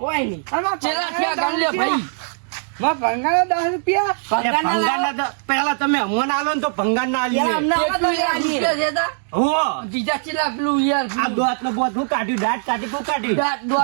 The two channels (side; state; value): left; silent; digital silence